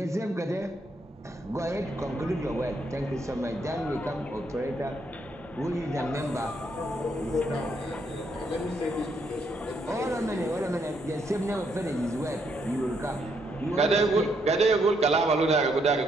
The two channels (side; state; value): both; normal; correlation 0.75